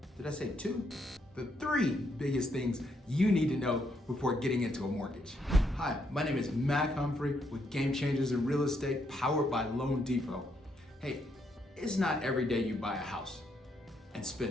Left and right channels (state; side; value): normal; both; correlation 0.76